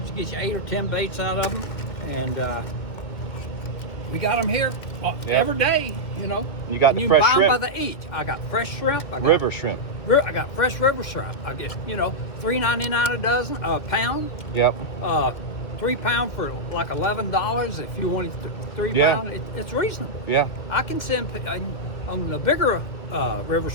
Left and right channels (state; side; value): late; right; 2.0 ms